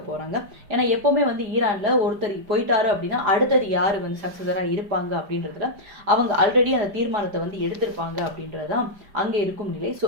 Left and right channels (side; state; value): left; late; 5.1 ms